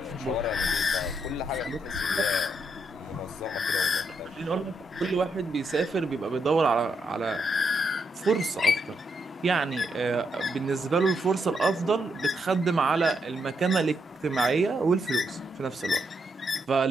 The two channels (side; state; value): both; normal; correlation 0.79